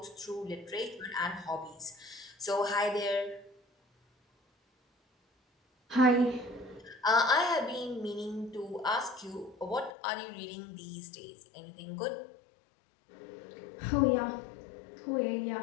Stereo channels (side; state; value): right; drops out; at 9.9 s